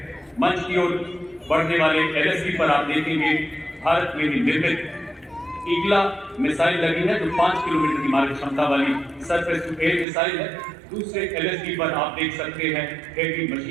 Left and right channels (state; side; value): drops out; left; at 10.1 s